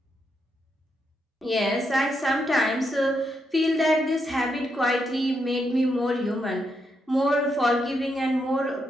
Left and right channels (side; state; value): both; normal; correlation 0.81